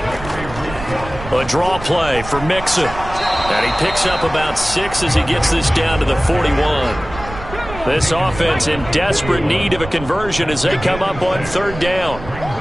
A draw play for Mixon. And he picks up about 6 as he gets this down to the 41. This offense in desperate need of a conversion as they come up on 3rd down.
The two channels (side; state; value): right; noise; rumble, 12 dB below the sound